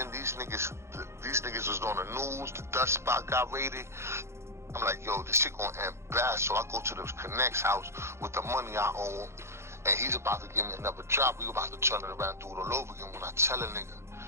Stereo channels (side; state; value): left; late; 0.13 ms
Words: These niggas was on the news. The dust spot got raided. I'm like, yo, this shit gonna end bad. So I go to the Connect's house with the money I owe him, and he's about to give me another job. We about to turn it around, do it all over again. When I tell a nigga,